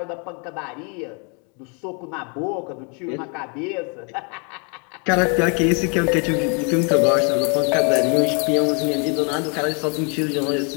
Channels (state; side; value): quieter; right; 36.5 dB